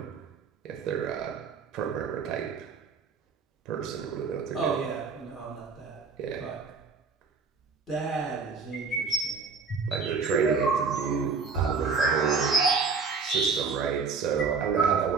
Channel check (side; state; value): left; quieter; 5.0 dB